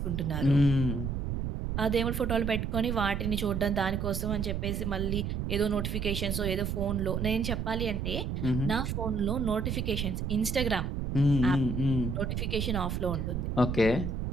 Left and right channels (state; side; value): noise; right; rumble, 2 dB below the sound